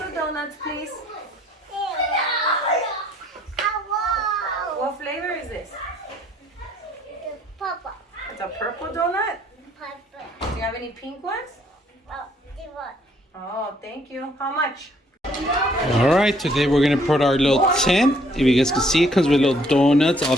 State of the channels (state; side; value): normal; both; correlation 0.64